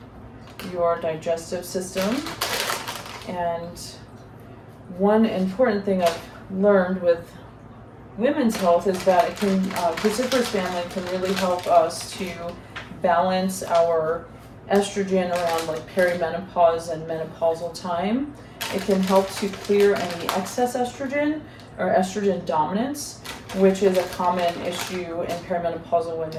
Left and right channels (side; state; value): both; identical; correlation 1.00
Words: your digestive system. And one important thing I've learned with women's health is that it can, cruciferous family can really help us to balance our estrogen around like perimenopause and menopausal time. It can help to clear any excess estrogen or estrogen dominance, which is a common issue in perimenopausal